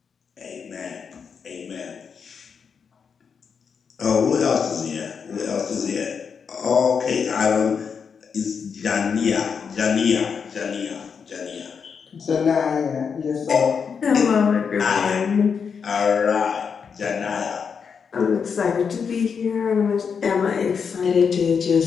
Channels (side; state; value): right; quieter; 6.3 dB